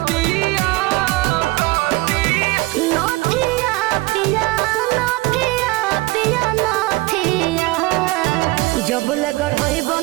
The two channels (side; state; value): left; quieter; 21.8 dB